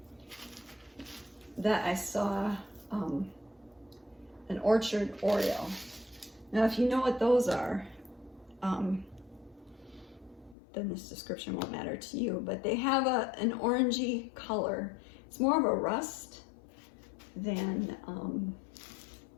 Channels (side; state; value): right; drops out; at 10.6 s